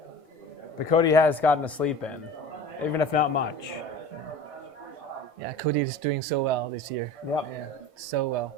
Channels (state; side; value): late; left; 1.5 ms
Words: But Cody has gotten a sleep in, even if not much. Yeah, Cody is doing so well this year. Yep. Yeah, so well.